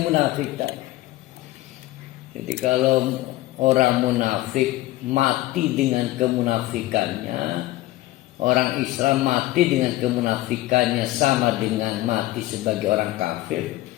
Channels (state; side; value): quieter; right; 17.0 dB